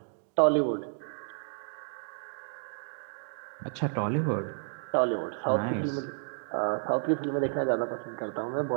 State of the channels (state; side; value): silent; left; digital silence